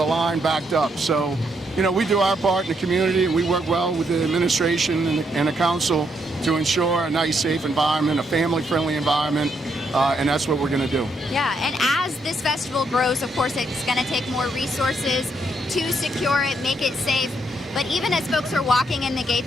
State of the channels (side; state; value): both; normal; correlation 0.76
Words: line backed up. So, we do our part in the community, and we work well with the administration and the council to ensure a nice, safe environment, a family-friendly environment, and that's what we're going to do. Yeah, and as this festival grows, of course, it's going to take more resources to secure it, make it safe. But even as folks are walking in the